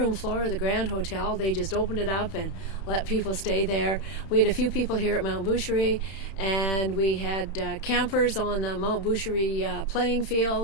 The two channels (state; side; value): late; right; 31 ms